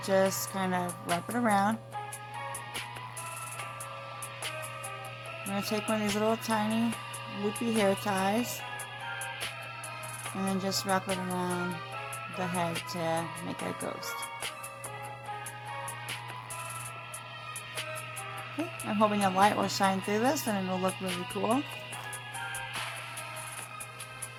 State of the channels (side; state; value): both; identical; correlation 1.00